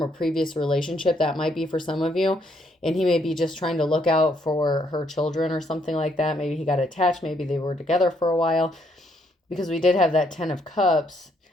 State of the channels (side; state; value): both; normal; correlation 0.72